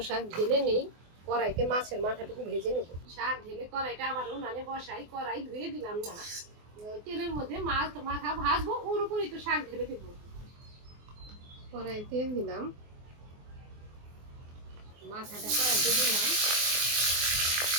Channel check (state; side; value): late; left; 24 ms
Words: শাক ঢেলে নেই, কড়াইতে মাছের মাথাটুকু ভেজে নেব। শাক ঢেলে কড়াইটা আবার উনানে বসাই, কড়াই ধুয়ে দিলাম না, তেলের মধ্যে মাছ মাথা ভাজবো, ওর উপরই তো শাক ঢেলে দেবো। কড়াই তেল দিলাম, মাথাটা কড়াইতে দিলাম।